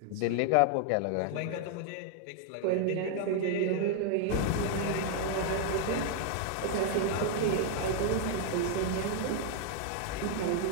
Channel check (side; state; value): both; different; correlation 0.00